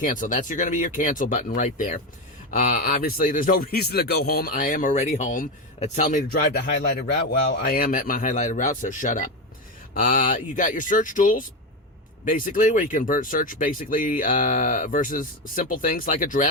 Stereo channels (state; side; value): normal; both; correlation 0.14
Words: That's going to be your cancel button right there. Obviously, there's no reason to go home. I am already home. It's telling me to drive to highlighted route. Well, I am at my highlighted route, so shut up. You got your search tools, basically, where you can search basically versus simple things like